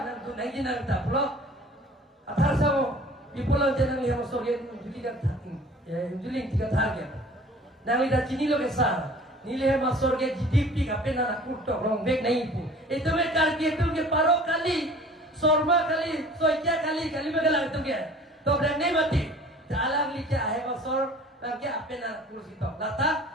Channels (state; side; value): normal; both; correlation 0.48